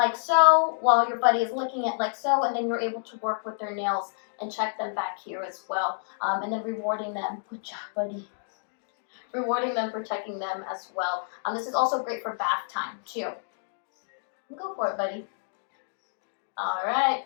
so while your buddy is licking it like so, and then you're able to work with their nails and check them back here as well. And then rewarding them. Good job, buddy. Rewarding them for checking them as well. This is also great for bath time too. Go for it, buddy. All right.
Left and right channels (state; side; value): silent; right; digital silence